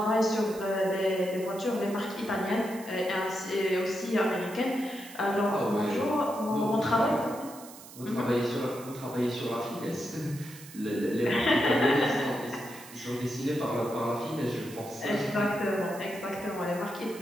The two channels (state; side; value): noise; right; hiss, 17 dB below the sound